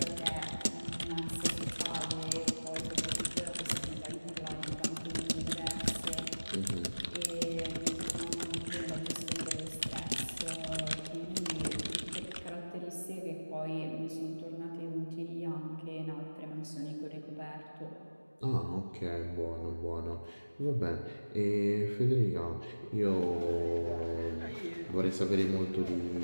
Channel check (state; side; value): inverted; both; correlation -1.00